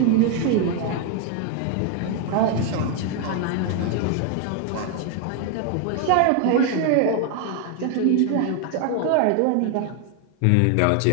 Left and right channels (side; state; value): both; different; correlation 0.01